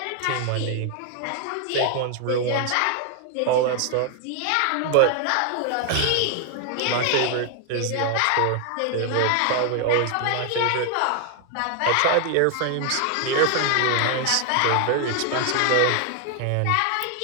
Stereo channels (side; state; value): both; different; correlation 0.00